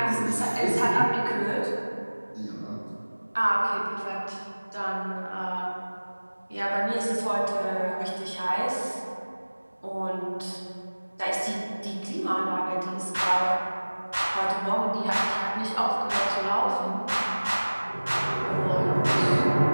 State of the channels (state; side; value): inverted; both; correlation -1.00